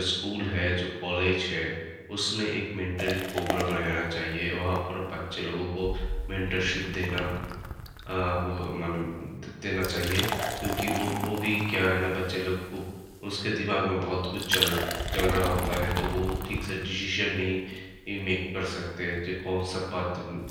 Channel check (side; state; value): both; identical; correlation 1.00